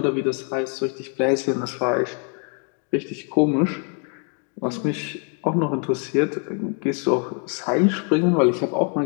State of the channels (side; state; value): right; quieter; 39.0 dB